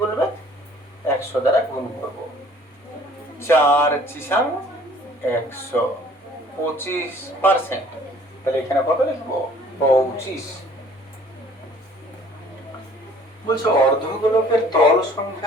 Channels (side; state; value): both; normal; correlation 0.54